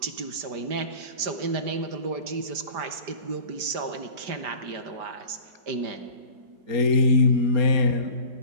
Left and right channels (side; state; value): left; late; 5.0 ms